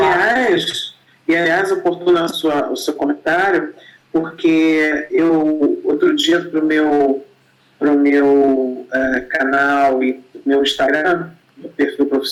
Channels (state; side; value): identical; both; correlation 1.00